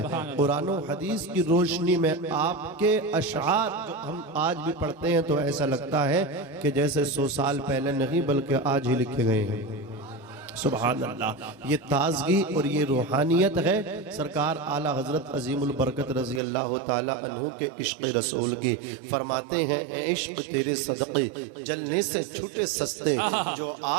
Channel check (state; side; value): drops out; left; at 16.4 s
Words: قرآن و حدیث کی روشنی میں آپ کے اشعار جو ہم آج بھی پڑھتے ہیں تو ایسا لگتا ہے کہ جیسے 100 سال پہلے نہیں بلکہ آج ہی لکھے گئے ہیں۔ سبحان اللہ، یہ تازگی اور یہ روحانیت ہے سرکار اعلیٰ حضرت عظیم البرکت رضی اللہ تعالی عنہ کے عشق رسول کی۔ فرماتے ہیں اے عشق تیرے صدقے جلنے سے چھوٹے سستے، جو